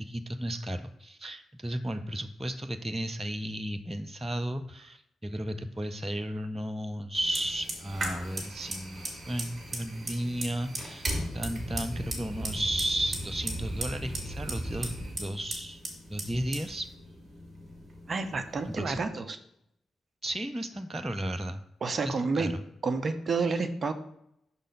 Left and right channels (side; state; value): both; normal; correlation 0.91